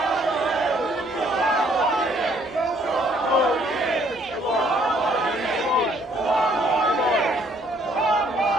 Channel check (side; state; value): both; normal; correlation 0.64